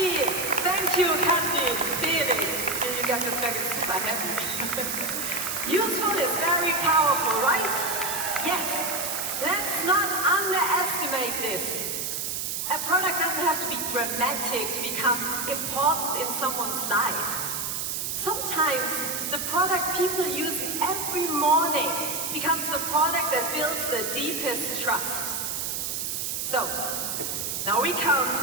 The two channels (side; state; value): right; noise; hiss, 2 dB below the sound